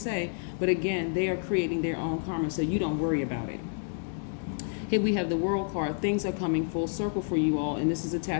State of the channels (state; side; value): silent; right; digital silence